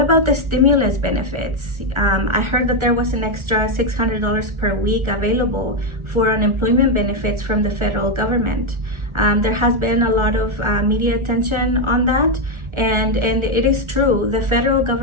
the stimulus benefits? I heard that there was an extra $600 per week available for unemployment benefits from the federal government. There has been a lot of media attention on that, and it is true. The federal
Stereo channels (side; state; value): left; late; 1.4 ms